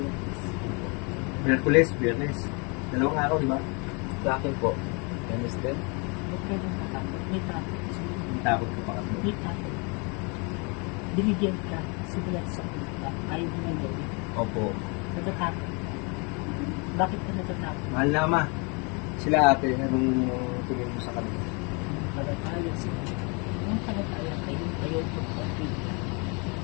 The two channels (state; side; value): quieter; right; 32.4 dB